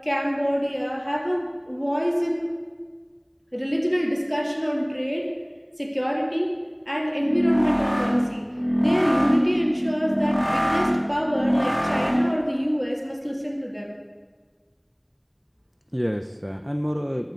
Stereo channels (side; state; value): both; identical; correlation 1.00